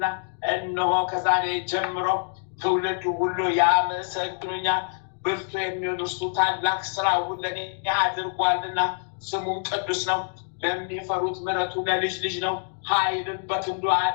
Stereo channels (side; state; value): right; silent; 61 dB below the other